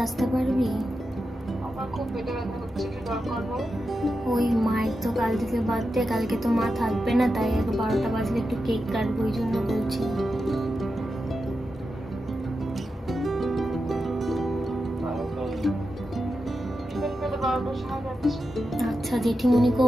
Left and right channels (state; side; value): normal; both; correlation 0.89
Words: আসতে পারবি? ওই মায়ের তো কাল থেকে বার্থডে, কালকে তো মা থাকবে না, তাই 12টা বাজলে একটু কেক কাটবো, ওই জন্য বলছি। আচ্ছা